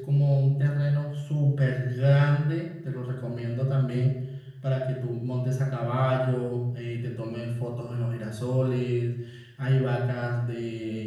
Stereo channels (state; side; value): identical; both; correlation 1.00